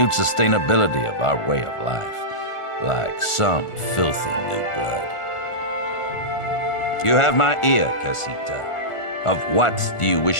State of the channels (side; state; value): right; late; 1.4 ms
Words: sustainability of our way of life, like some filthy new blood. You have my ear, Casita. Of what do you